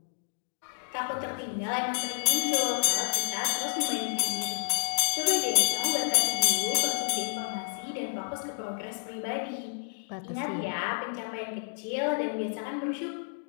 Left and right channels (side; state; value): right; silent; digital silence